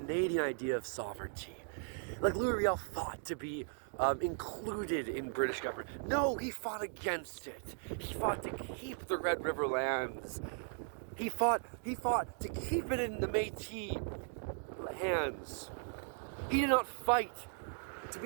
idea of sovereignty. Like Louis Riel fought to be included in British government. No, he fought against it. He fought to keep the Red River lands. He fought to keep it in the Métis hands. He did not fight to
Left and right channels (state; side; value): silent; left; 53 dB below the other